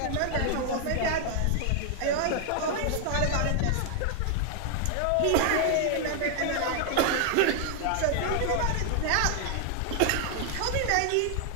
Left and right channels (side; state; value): both; different; correlation 0.00